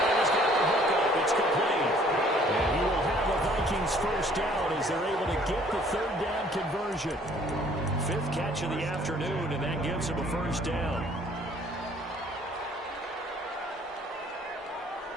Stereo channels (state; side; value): normal; both; correlation 0.58